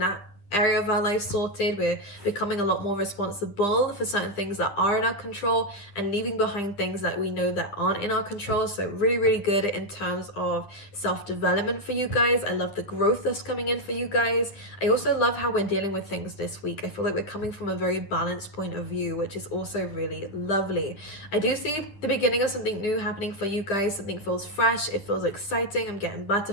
area of our life sorted. We're becoming a lot more responsible for certain things that are in our control and leaving behind things that we know that aren't in our control. So really good in terms of self-development for you guys. I love the growth that's coming in for you guys. I also love how we're dealing with things this week. I feel like we're coming from a very balanced point of view, which is also really lovely. I do see the beginning of something new happening for you guys. Something feels fresh, it feels exciting. I'm getting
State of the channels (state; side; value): late; right; 9.9 ms